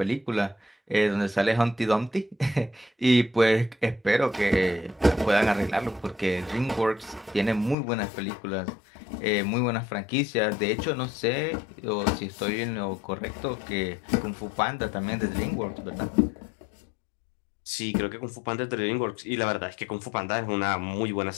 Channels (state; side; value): drops out; right; at 7.8 s